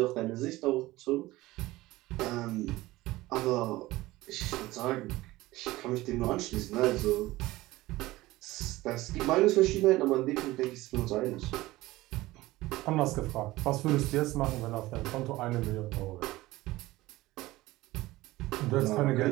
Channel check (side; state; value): left; quieter; 18.3 dB